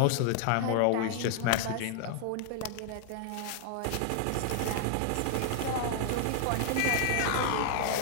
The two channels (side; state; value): both; different; correlation 0.00